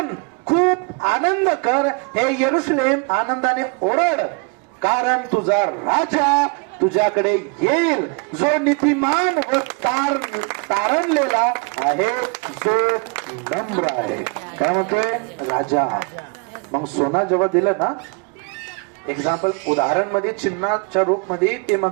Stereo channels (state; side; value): quieter; left; 33.0 dB